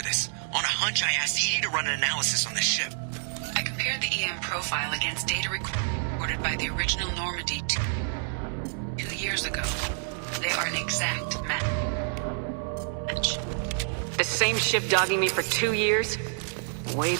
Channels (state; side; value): silent; left; 59 dB below the other